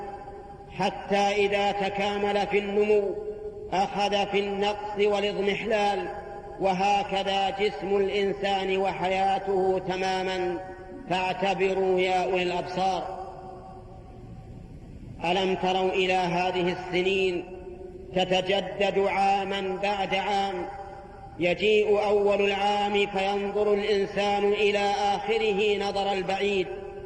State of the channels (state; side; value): identical; both; correlation 1.00